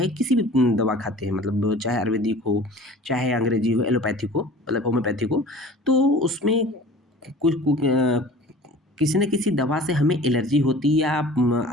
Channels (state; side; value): normal; both; correlation 0.44